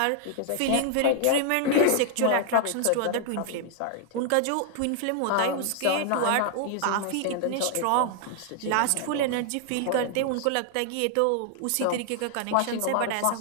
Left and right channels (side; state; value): both; different; correlation 0.00